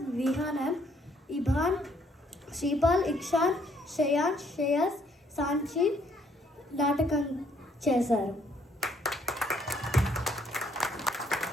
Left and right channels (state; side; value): normal; both; correlation 0.67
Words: విహానం, ఇభాన్, శ్రీపాల్, ఇక్షాన్, శ్రేయాన్, శ్రేయస్, సాంచి నాటకం చేశారు.